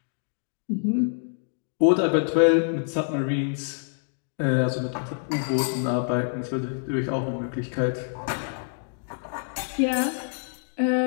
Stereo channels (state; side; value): silent; right; digital silence